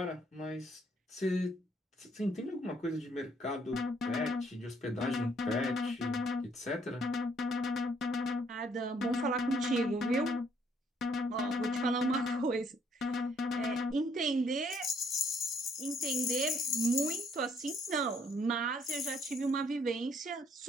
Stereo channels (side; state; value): both; normal; correlation 0.66